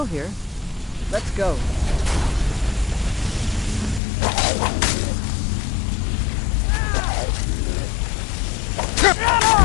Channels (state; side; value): drops out; right; at 4.0 s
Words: here. Let's go.